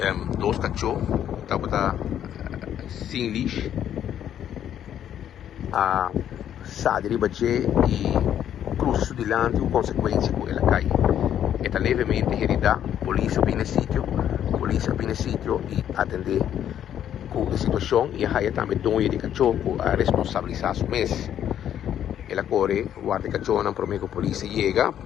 dois cachorros estava sem lixo a sali ribace e cruza su dilanti com consequência com ela cai. Está levemente herida, polícia vem no sítio e atender com a situação e aí também dono de cachorro a responsabilizar o mês. Ela corre, guarda cachorro não promete que a polícia chega,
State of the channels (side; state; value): right; quieter; 10.2 dB